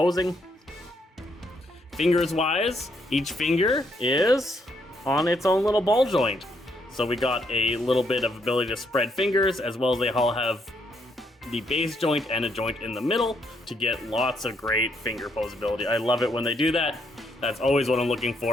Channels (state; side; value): normal; both; correlation 0.74